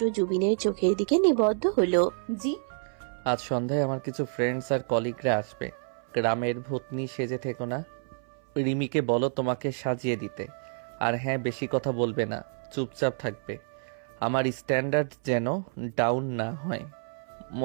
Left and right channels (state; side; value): silent; left; 59 dB below the other